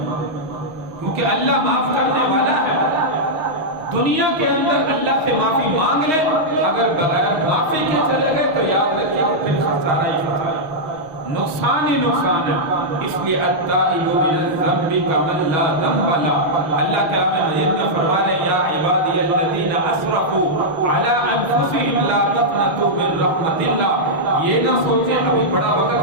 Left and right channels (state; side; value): late; left; 6.4 ms